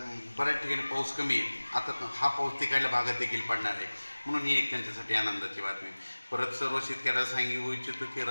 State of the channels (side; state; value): both; inverted; correlation -1.00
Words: बऱ्याच ठिकाणी पाऊस कमी आहे। आता हा पाऊस तिकडल्या भागात देखील पडणार आहे, म्हणून ही एक त्यांच्यासाठी आनंदाची बातमी। परत सर्व शेतकऱ्याला सांगू इच्छितो की